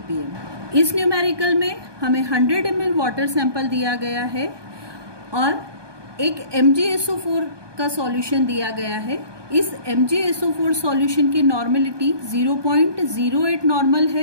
इस numerical में हमें 100 ml water sample दिया गया है और एक MgSO4 का solution दिया गया है. इस MgSO4 सॉल्यूशन की नॉर्मलिटी 0.08 नॉर्मल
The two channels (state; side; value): late; left; 1.2 ms